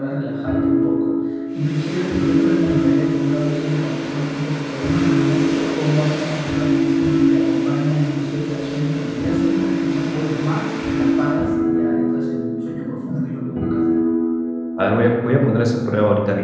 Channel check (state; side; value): identical; both; correlation 1.00